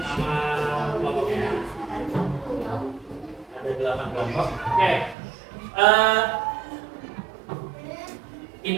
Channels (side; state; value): left; drops out; at 5.2 s